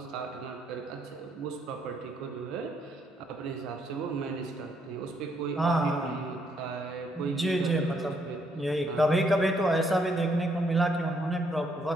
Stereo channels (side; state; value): both; normal; correlation 0.72